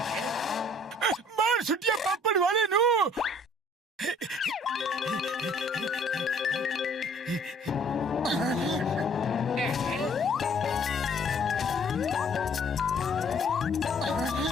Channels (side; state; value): both; normal; correlation 0.57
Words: मार छुट्टियां पापड़ वाले नो।